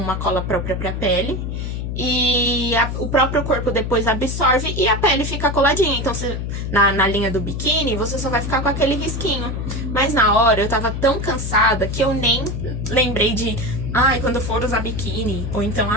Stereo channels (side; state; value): left; noise; hum, 4 dB below the sound